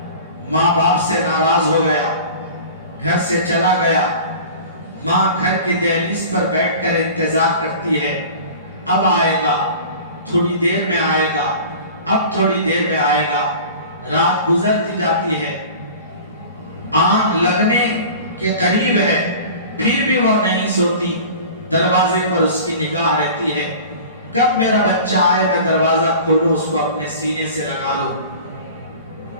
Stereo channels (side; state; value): both; inverted; correlation -0.40